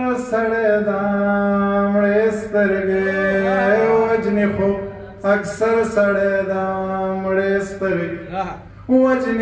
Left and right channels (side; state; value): both; identical; correlation 1.00